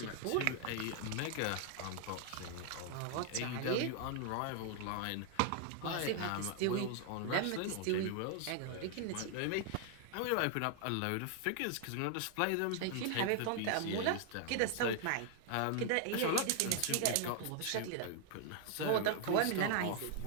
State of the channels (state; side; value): different; both; correlation 0.00